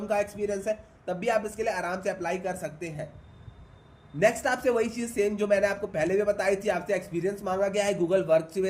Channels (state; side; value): identical; both; correlation 1.00